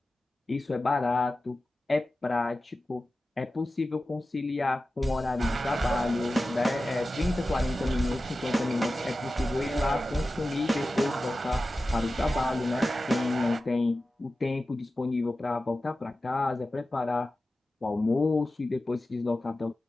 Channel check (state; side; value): normal; both; correlation 0.94